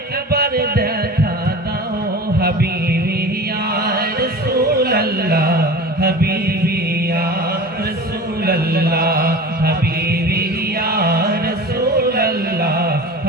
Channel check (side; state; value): both; normal; correlation 0.36